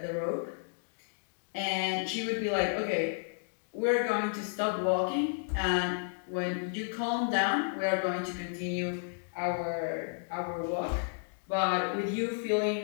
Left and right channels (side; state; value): right; silent; digital silence